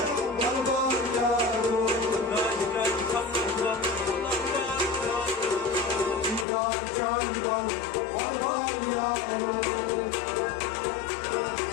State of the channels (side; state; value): right; drops out; at 6.5 s